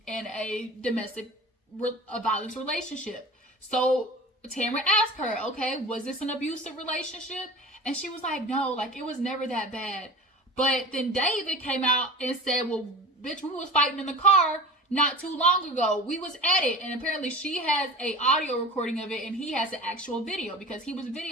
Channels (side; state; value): both; normal; correlation 0.36